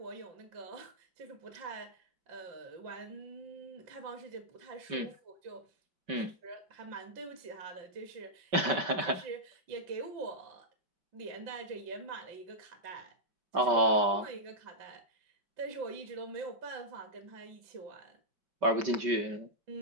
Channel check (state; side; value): late; left; 5.2 ms